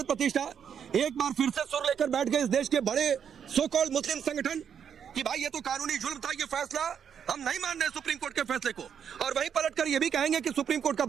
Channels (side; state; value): left; quieter; 7.9 dB